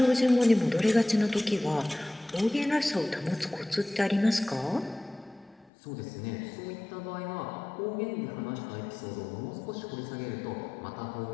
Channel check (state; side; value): drops out; right; at 5.7 s